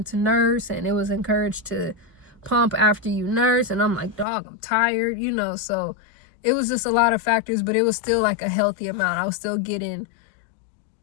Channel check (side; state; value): right; drops out; at 4.2 s